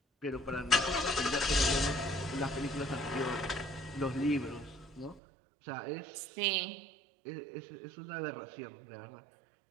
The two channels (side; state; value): left; drops out; at 5.2 s